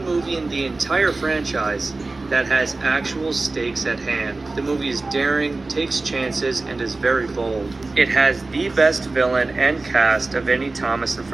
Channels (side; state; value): left; quieter; 3.4 dB